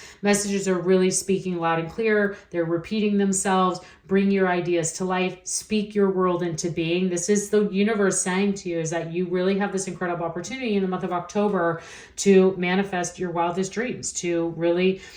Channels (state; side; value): identical; both; correlation 1.00